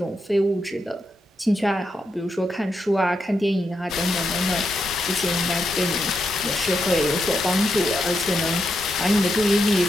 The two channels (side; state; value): both; normal; correlation 0.83